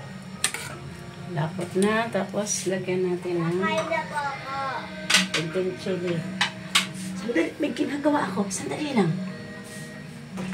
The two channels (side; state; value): both; identical; correlation 1.00